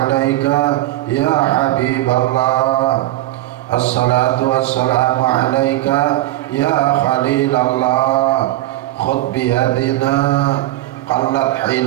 ya Habiballah. Assalatu wassalamu alaika ya Khalilallah. Khudh biyadina qallat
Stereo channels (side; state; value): left; quieter; 16.1 dB